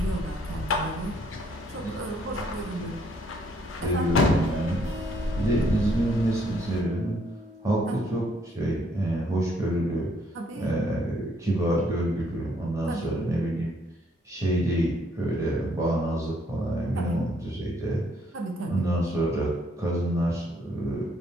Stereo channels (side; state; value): both; normal; correlation 0.68